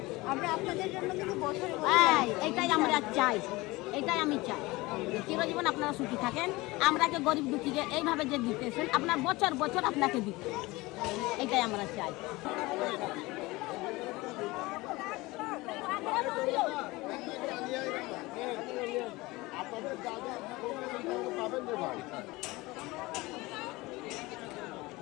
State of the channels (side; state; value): right; quieter; 21.5 dB